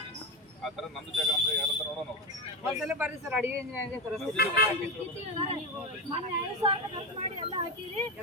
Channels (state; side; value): normal; both; correlation 0.14